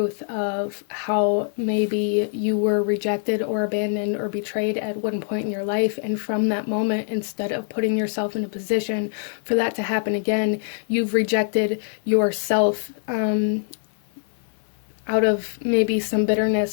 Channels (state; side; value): silent; right; digital silence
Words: of how maybe you were rejected or abandoned or betrayed at one point in your life, and from that moment, instead of putting yourself in a position for that to happen again, you've rejected yourself out of maybe some